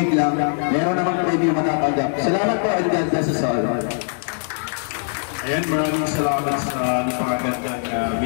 lang, meron naman premyo matatanggap. Salamat po, and God bless us all. Ayan, maraming salamat sa napakagandang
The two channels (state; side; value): silent; right; digital silence